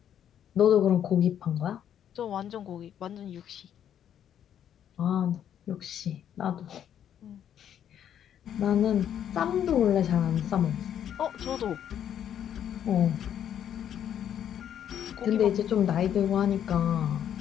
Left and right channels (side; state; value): right; quieter; 9.7 dB